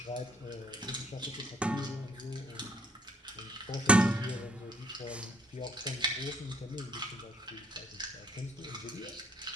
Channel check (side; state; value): both; normal; correlation 0.65